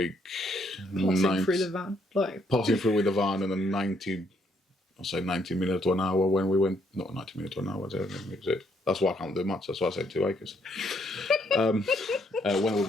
passing through the van, passing through with the van, and then 90 minutes to an hour when we went. Not 90 minutes to an hour. That's why I can't do much. That's why I said 2 acres. When we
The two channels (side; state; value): both; normal; correlation 0.71